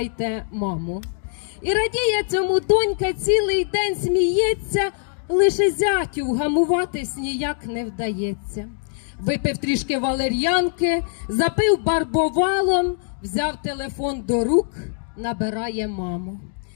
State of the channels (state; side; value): silent; right; 61 dB below the other